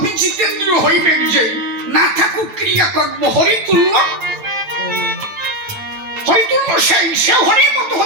জিতেন্দ্র হইবেন যে না থাকুক ক্রিয়াকর্ম হরিতুল্য। হরিতুল্য সে হরির মতো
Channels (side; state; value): left; late; 9.0 ms